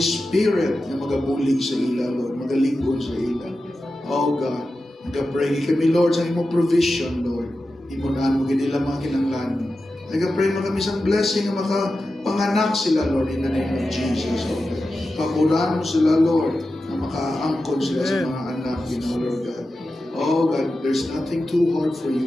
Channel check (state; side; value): normal; both; correlation 0.92